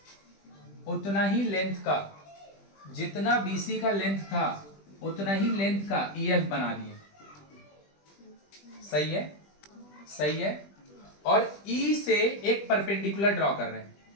उतना ही लेंथ का, जितना बीसी का लेंथ था उतना ही लेंथ का ईएफ बना दिए। सही है? सही है। और ई से एक परपेंडिकुलर ड्रॉ कर रहे हैं,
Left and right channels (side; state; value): right; late; 20 ms